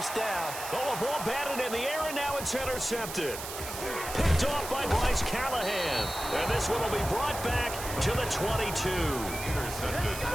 down. Oh, a ball batted in the air, and now it's intercepted. Picked off by Bryce Callahan. And this one will be brought back to the 22. Intercepted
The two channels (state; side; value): noise; right; hiss, 8 dB below the sound